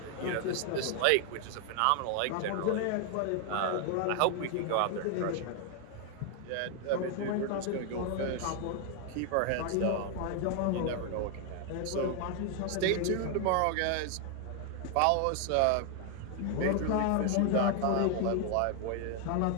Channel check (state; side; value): different; both; correlation 0.00